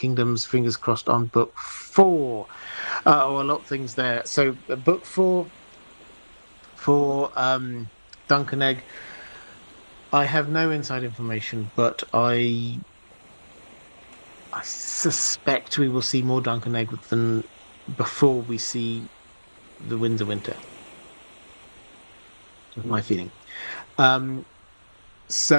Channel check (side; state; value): both; inverted; correlation -1.00